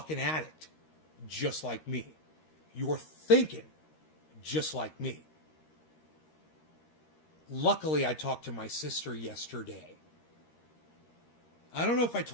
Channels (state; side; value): late; right; 13 ms